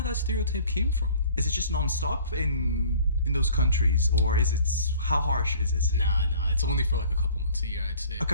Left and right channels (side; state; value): both; inverted; correlation -0.50